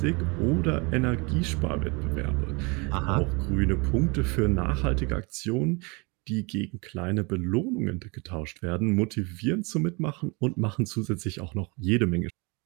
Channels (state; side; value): quieter; left; 29.3 dB